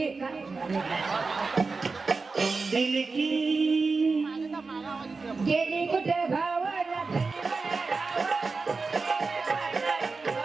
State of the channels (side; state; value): left; quieter; 4.2 dB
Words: दिल की गेली कुठे गावाला